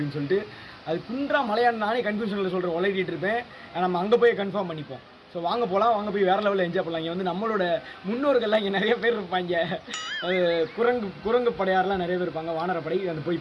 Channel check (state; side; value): identical; both; correlation 1.00